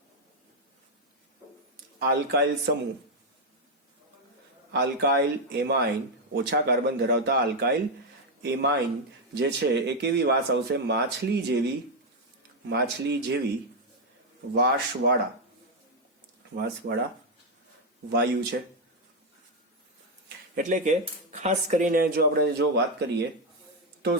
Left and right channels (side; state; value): both; normal; correlation 0.03